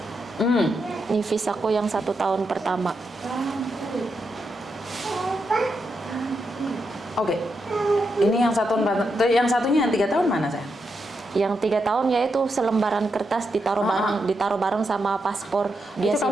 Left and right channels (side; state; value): both; normal; correlation 0.84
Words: Ini visaku yang 1 tahun pertama. Oke. Ini yang yang satunya yang 3 tahun mana, saya? Yang 3 tahun yaitu selembaran kertas ditaruh bareng sama paspor. Dia Itu kamu